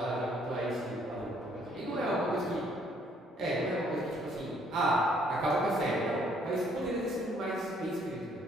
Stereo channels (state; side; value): normal; both; correlation 0.65